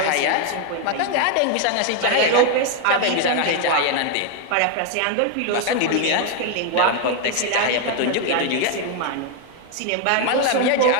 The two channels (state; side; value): different; both; correlation 0.01